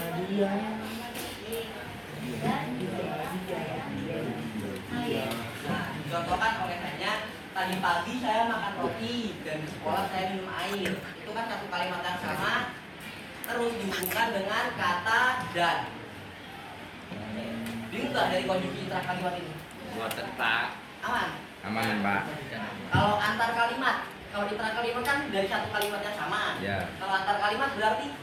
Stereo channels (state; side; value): identical; both; correlation 1.00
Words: dia. Nah, dicontohkan oleh hanya tadi pagi saya makan roti dan di sekolah saya minum air. Itu kan satu kalimat yang sama, terus dihubungkan dengan kata dan. Bingung nggak dari konjungsi intra-kalimat ini? Buat tetap Aman? aman, Pak. Kalau antar kalimat, kalau intra-kalimat kan dari satu kalimat yang sama. Ya. Kalau antar kalimat berarti